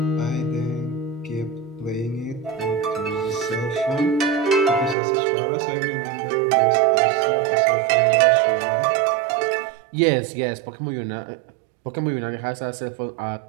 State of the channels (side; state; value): left; drops out; at 5.0 s